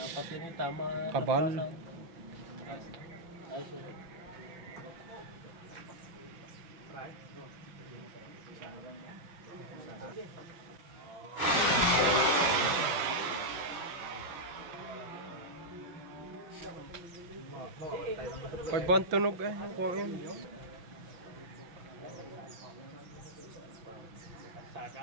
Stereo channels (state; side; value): late; left; 5.9 ms